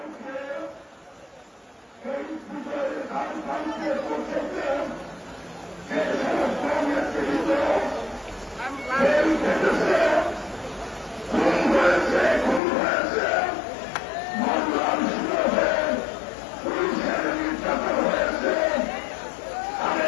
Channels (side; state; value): right; drops out; at 12.6 s